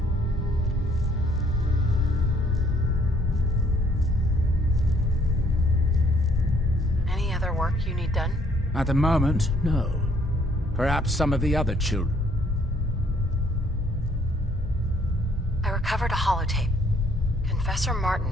Any other work you need done? At the moment, no. Perhaps some of the other children. I recovered a holotape. Confessor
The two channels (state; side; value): normal; both; correlation 0.64